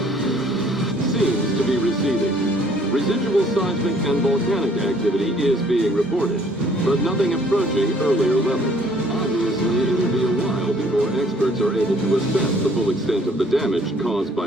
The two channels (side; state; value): both; normal; correlation 0.59